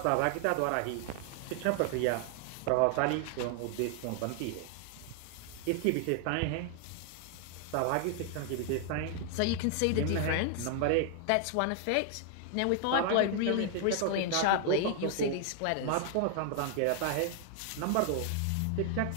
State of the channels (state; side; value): different; both; correlation 0.00